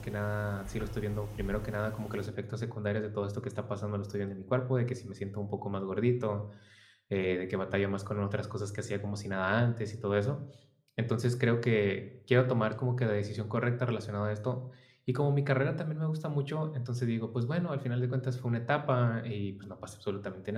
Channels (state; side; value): identical; both; correlation 1.00